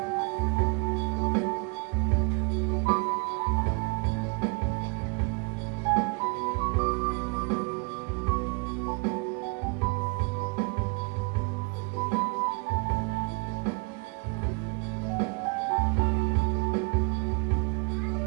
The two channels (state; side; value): quieter; left; 31.9 dB